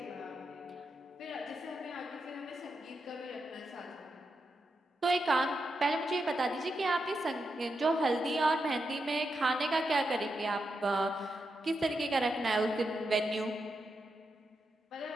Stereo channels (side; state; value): both; normal; correlation 0.86